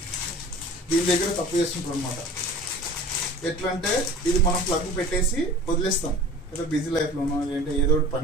దీని దగ్గర తప్పు చేస్తుంటారు అనమాట. ఎట్లా అంటే ఇది మనం ప్లగ్ పెట్టేసి వదిలేస్తాం, ఏదో బిజీ లైఫ్లోనో లేదంటే ఏదో ఒకటి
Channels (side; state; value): both; normal; correlation 0.41